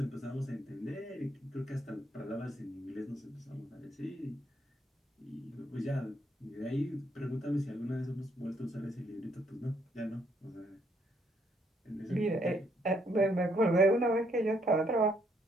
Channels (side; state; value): both; normal; correlation 0.71